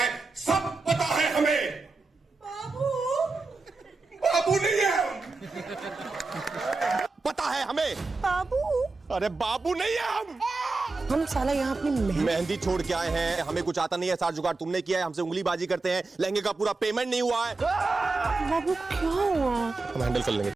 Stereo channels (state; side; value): quieter; left; 3.7 dB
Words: सब पता है हमें। बाबू नहीं है हम, पता है हमें। बाबू, अरे बाबू नहीं है हम साला यहाँ अपनी मेहंदी छोड़ के आए हैं, हमें कुछ आता नहीं है, सारा जुगाड़ तुमने किया है, हमसे उंगली बाजी करते हैं, लहंगे का पूरा पेमेंट नहीं हुआ है। बाबू क्या हुआ? हम हैंडल कर लेंगे।